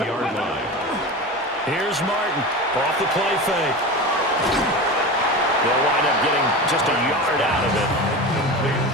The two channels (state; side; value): normal; both; correlation 0.28